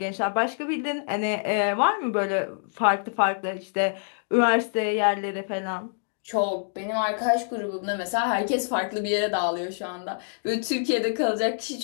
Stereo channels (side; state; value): right; silent; digital silence